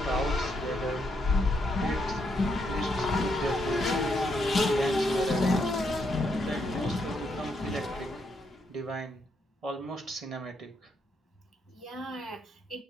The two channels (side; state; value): both; normal; correlation 0.77